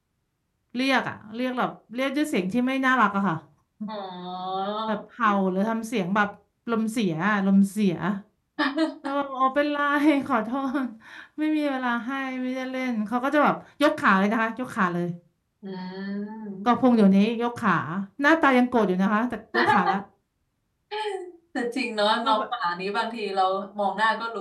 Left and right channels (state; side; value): identical; both; correlation 1.00